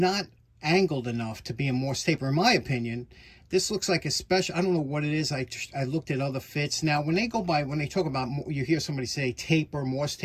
angled enough to be a Morse Taper, in my opinion. This looks like a special, I don't know what it is. I looked at other fits. Now, when they talk about, you hear somebody say taper, Morse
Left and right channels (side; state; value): both; identical; correlation 1.00